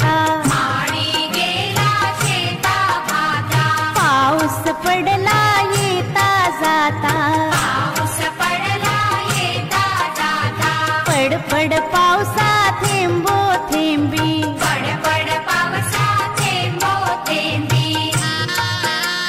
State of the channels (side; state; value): both; identical; correlation 1.00